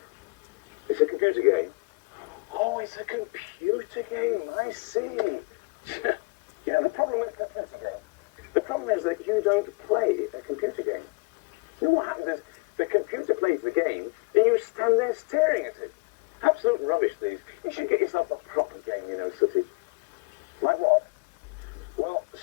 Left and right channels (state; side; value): quieter; right; 29.0 dB